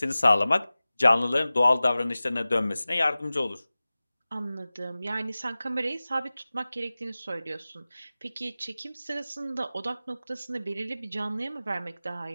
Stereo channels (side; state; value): both; inverted; correlation -0.97